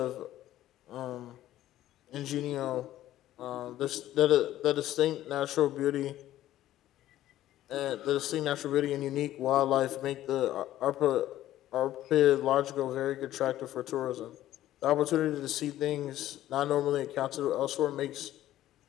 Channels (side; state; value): right; quieter; 13.6 dB